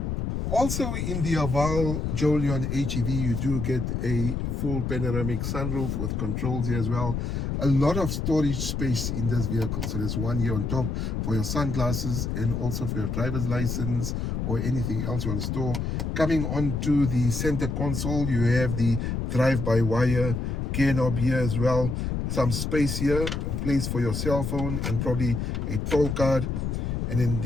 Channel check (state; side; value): noise; left; rumble, 2 dB below the sound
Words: Also in the Haval Jolion HEV, you do get a full panoramic sunroof with controls here as well. A lot of storage space in this vehicle. So there's one here on top for your sunglasses and also for your driver's license or anything else you want to store. Coming onto the center console, you have the drive-by-wire gear knob here as well. Some space here, a place for your cell phone and probably a toll card. And then